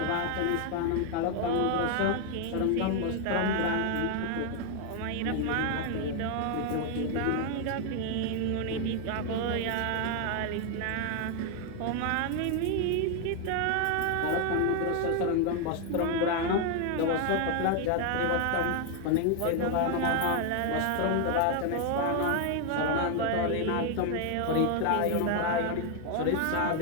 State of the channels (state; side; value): different; both; correlation 0.00